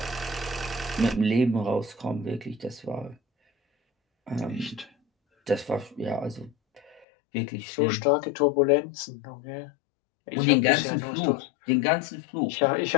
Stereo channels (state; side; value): drops out; right; at 7.1 s